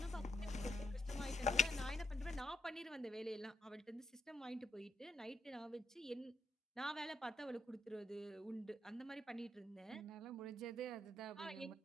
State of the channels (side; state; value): both; normal; correlation 0.81